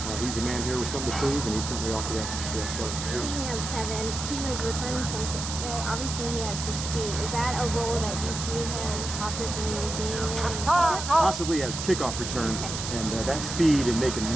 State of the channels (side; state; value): right; noise; hiss, 5 dB below the sound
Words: He's a man here with something to prove, and he's certainly off to that start. Speaking of Tevin, he was returning some kicks today. Obviously, he has the speed. Is that a role that you see him possibly being in? Possibly as kickoff return, and that speed and making